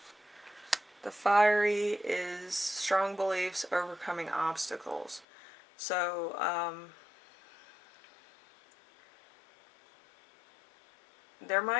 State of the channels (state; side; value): drops out; right; at 5.2 s